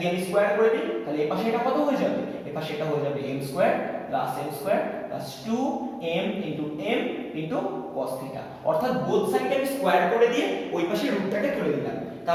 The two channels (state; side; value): identical; both; correlation 1.00